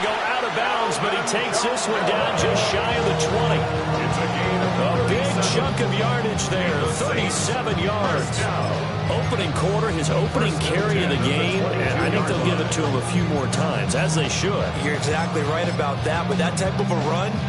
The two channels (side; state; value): both; identical; correlation 1.00